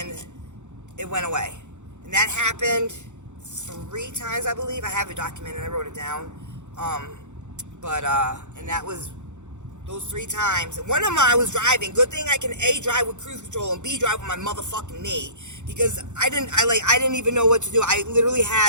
it went away. And that happened 3 times, I believe. I have it documented. I wrote it down. And that was those 3 times. And one of them I was driving. Good thing I can A, drive with cruise control, and B, drive with my motherfucking knee. Because I didn't even know what to do. I literally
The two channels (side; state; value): left; late; 0.84 ms